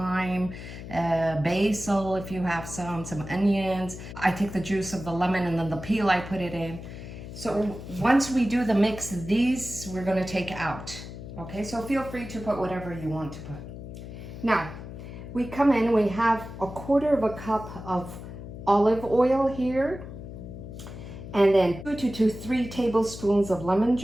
basil if you have some onions. I take the juice of the lemon and then the peel I put it in. So once we do the mix, these we're gonna take out. Okay, so feel free to put whatever you want to put. Now, we come in, we have 1/4 cup of olive oil here. And then 2 to 3 tablespoons of lemon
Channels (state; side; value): noise; left; hum, 11 dB below the sound